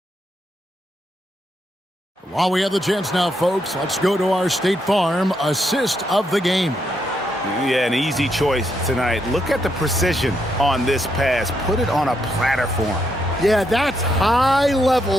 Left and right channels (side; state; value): both; normal; correlation 0.79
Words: While we have the chance now, folks, let's go to our State Farm assist of the game. Yeah, an easy choice tonight. Look at the precision on this pass. Put it on a platter for him. Yeah, that's